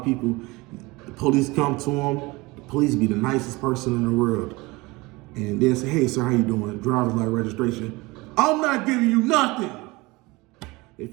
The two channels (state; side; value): quieter; left; 23.2 dB